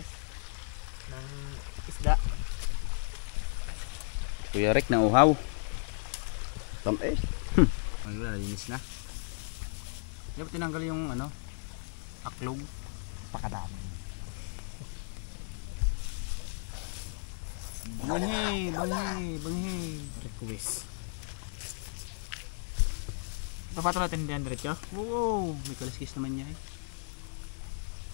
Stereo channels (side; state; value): right; silent; 55 dB below the other